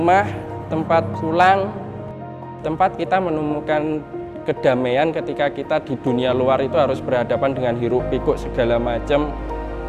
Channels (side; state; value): both; identical; correlation 1.00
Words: tempat pulang, tempat kita menemukan kedamaian ketika kita di dunia luar itu harus berhadapan dengan hiruk pikuk segala macam.